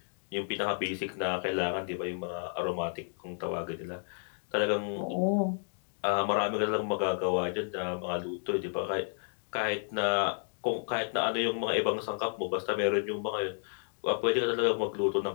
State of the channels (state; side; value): silent; right; digital silence